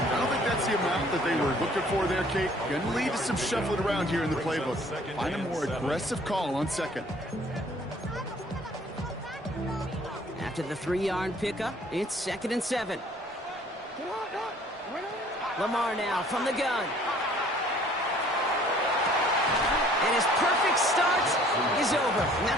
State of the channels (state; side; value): normal; both; correlation 0.56